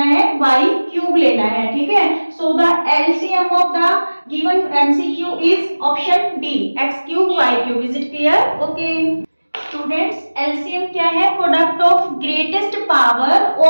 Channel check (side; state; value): both; inverted; correlation -1.00